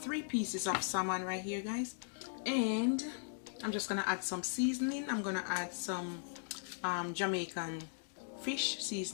pieces of salmon right here, guys, and I'm just gonna add some seasoning. I'm gonna add some Jamaican fish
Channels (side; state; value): right; silent; digital silence